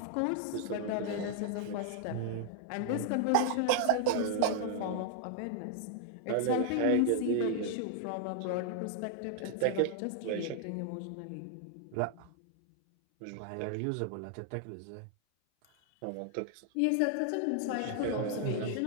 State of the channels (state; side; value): different; both; correlation 0.00